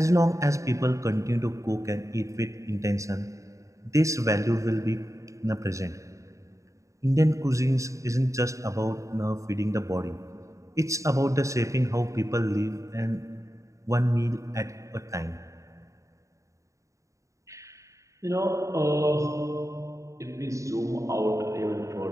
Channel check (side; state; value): left; late; 0.15 ms